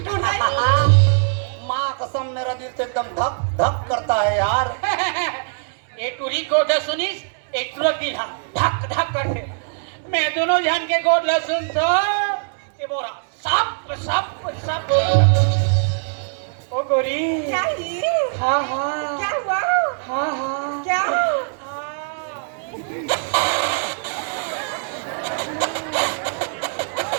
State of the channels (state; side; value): silent; left; digital silence